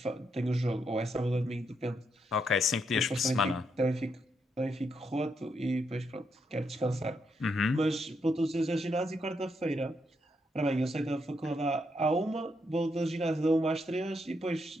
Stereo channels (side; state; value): both; normal; correlation 0.79